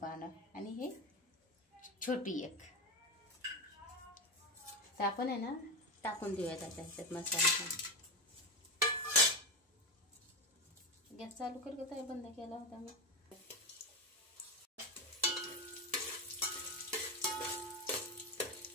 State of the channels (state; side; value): normal; both; correlation 0.14